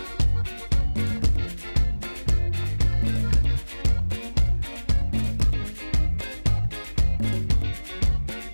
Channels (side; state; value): both; inverted; correlation -1.00